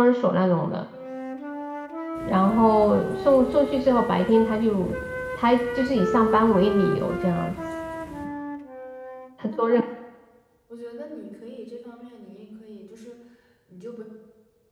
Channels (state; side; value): identical; both; correlation 1.00